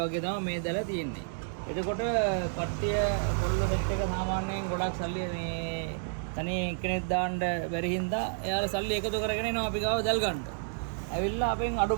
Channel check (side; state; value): left; silent; 58 dB below the other